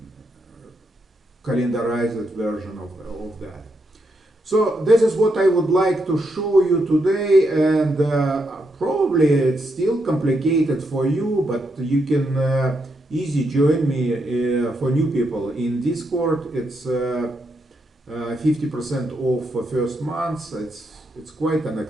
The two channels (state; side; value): normal; both; correlation 0.80